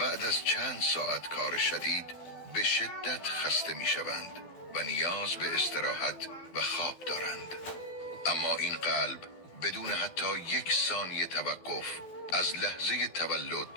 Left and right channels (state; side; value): late; right; 12 ms